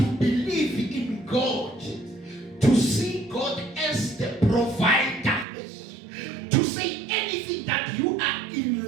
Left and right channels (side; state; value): left; drops out; at 5.5 s